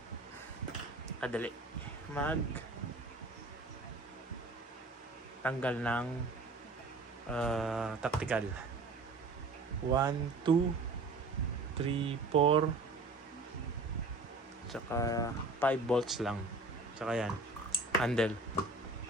Kadali. Tanggal ng tactical. 1, 2, 3, 4, tsaka 5 bolts lang. Tsaka yan, handle.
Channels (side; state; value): left; quieter; 3.2 dB